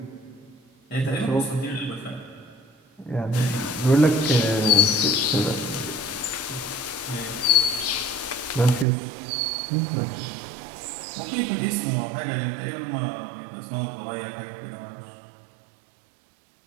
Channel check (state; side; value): drops out; left; at 8.8 s